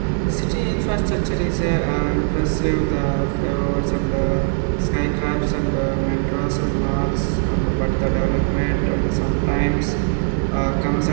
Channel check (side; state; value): left; silent; 64 dB below the other